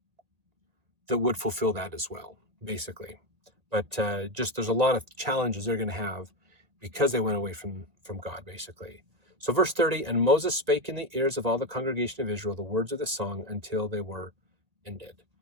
would fulfill that as well, basically. But just there's a lot of challenges they're going to have because they went away from God, basically. So verse 30, and Moses spake in the ears of all the congregation of Israel the words of the song until they were ended.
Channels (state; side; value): late; left; 1.8 ms